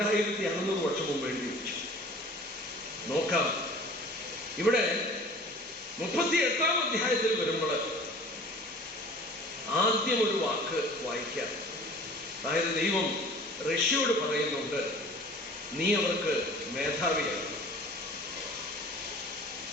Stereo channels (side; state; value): both; normal; correlation 0.46